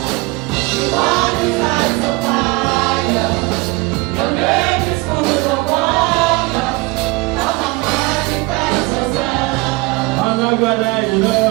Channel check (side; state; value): left; quieter; 24.4 dB